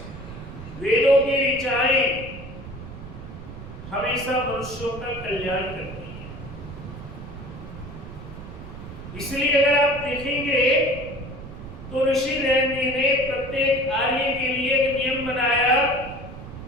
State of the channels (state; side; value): noise; right; rumble, 12 dB below the sound